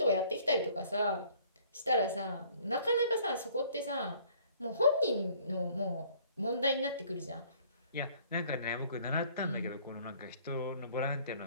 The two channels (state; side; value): inverted; both; correlation -0.57